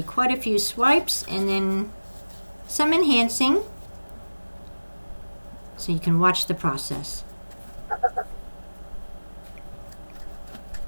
quite a few swipes and then some enhancing so you can watch the process.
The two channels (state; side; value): inverted; both; correlation -1.00